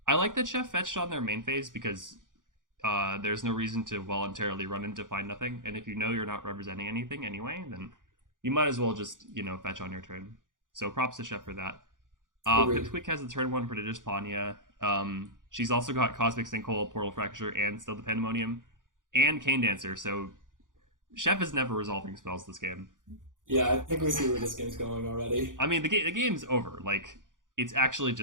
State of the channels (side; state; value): left; late; 0.88 ms